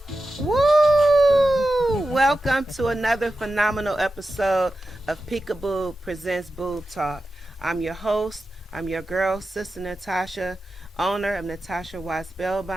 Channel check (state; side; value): normal; both; correlation 0.92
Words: Woo! Welcome to another phenomenal episode of Peekaboo Presents Boob Talk. I'm your host. I'm your girl, Sister Natasha, owner of Natasha White